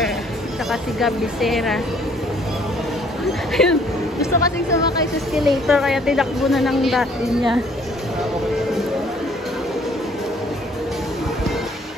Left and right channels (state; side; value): normal; both; correlation 0.61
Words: saka si Gab Becerra. Gusto kasing sumakay sa escalator kaya tinakbo na ng dati niya.